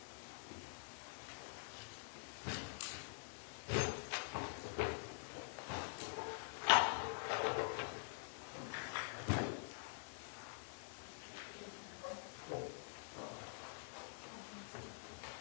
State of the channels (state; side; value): silent; right; digital silence